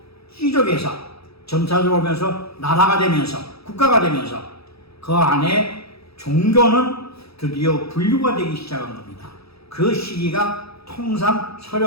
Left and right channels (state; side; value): late; right; 0.77 ms